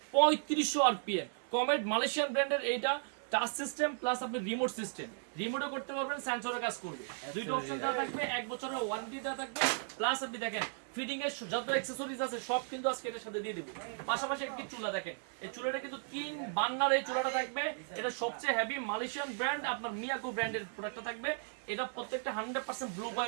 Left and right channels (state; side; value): silent; left; digital silence